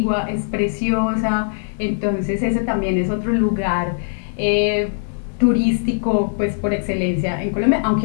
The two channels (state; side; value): silent; right; 66 dB below the other